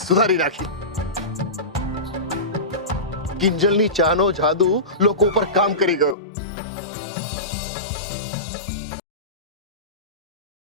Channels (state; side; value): drops out; right; at 6.2 s